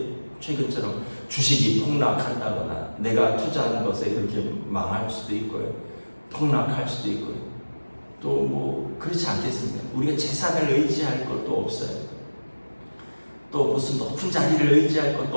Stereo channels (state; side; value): inverted; both; correlation -1.00